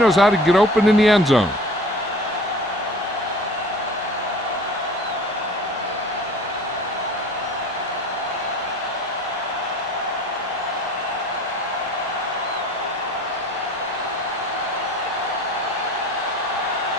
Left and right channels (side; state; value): both; normal; correlation 0.44